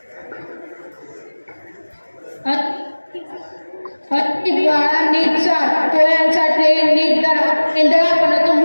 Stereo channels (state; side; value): inverted; both; correlation -1.00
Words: बाळा नीट चाल, पोळ्यांचा ट्रेन नीट धरा, एंधळापणा तो